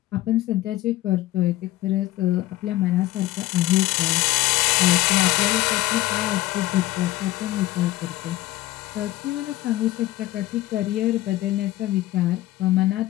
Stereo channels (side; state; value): right; quieter; 16.5 dB